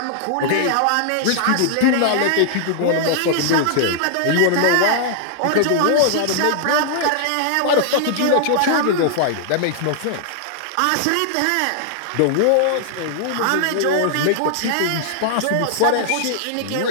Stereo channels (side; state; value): both; different; correlation 0.00